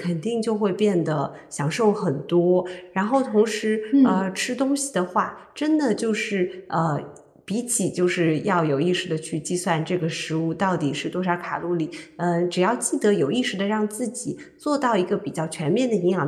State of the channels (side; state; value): both; identical; correlation 1.00